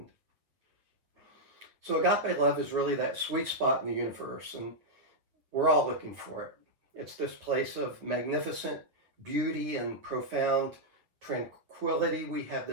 So agape love is really that sweet spot in the universe, and we're all looking for it. It's this place of magnificent beauty and profound tranquility. We have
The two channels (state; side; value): late; left; 8.9 ms